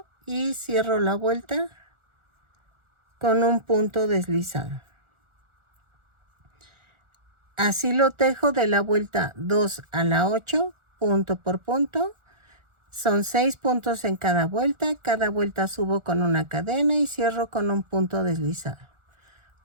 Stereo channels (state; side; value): late; left; 1.4 ms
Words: y cierro la vuelta con un punto deslizado. Así lo tejo de la vuelta 2 a la 8, punto por punto. Son 6 puntos en cada vuelta subo con una cadena y cierro con un punto deslizado.